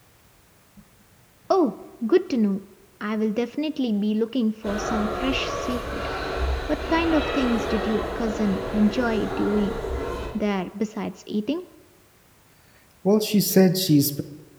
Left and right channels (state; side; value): identical; both; correlation 1.00